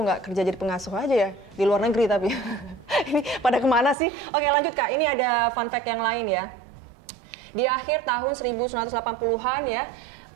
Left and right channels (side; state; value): left; drops out; at 4.0 s